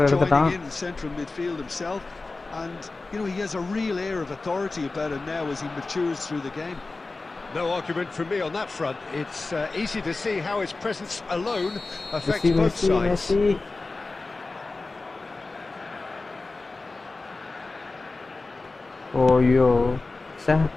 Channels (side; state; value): right; quieter; 3.5 dB